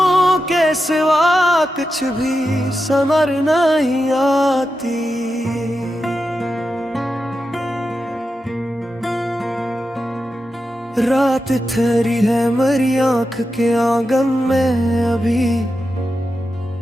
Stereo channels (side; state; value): both; normal; correlation 0.89